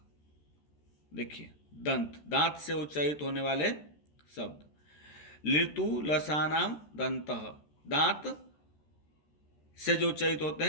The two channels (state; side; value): late; right; 13 ms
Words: देखिए दंत, दांत से उच्चारित होने वाले शब्द। ऋतुलसानाम दंतः, दांत से जो उच्चारित होते